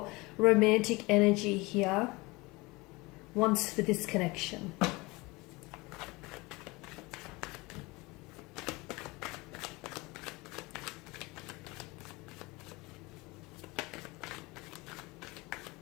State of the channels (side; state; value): right; quieter; 23.8 dB